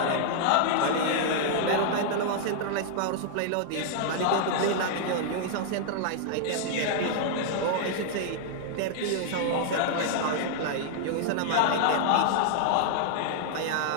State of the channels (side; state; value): both; different; correlation -0.01